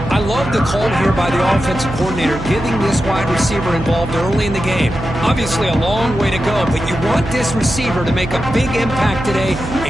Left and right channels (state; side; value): noise; right; hum, 8 dB below the sound